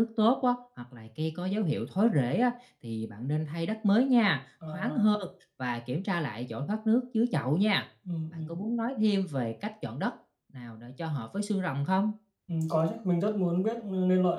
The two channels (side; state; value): both; identical; correlation 1.00